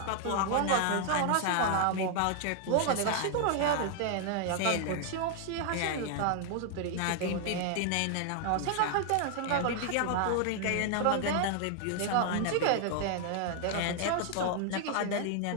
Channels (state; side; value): different; both; correlation 0.00